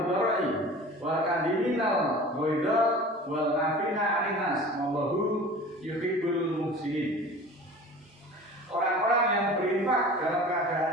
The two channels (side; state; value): both; normal; correlation 0.40